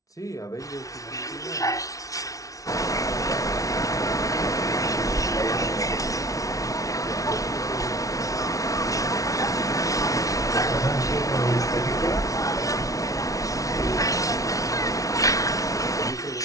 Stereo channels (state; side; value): late; right; 0.17 ms